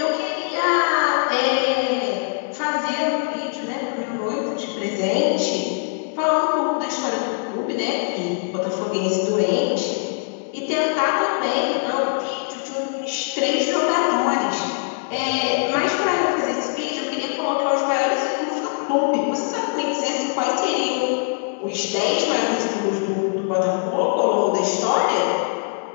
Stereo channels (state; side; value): silent; right; digital silence